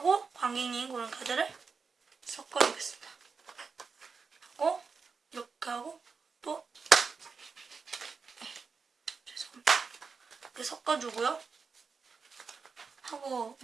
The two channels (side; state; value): left; quieter; 5.1 dB